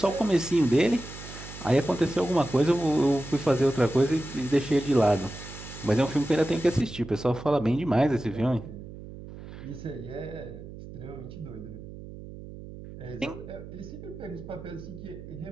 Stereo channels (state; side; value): noise; right; hum, 13 dB below the sound